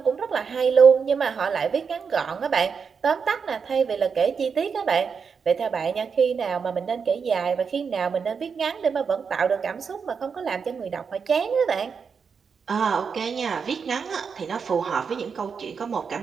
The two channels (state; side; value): quieter; left; 6.0 dB